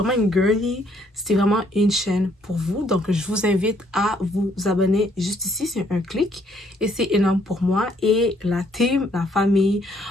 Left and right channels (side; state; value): both; normal; correlation 0.67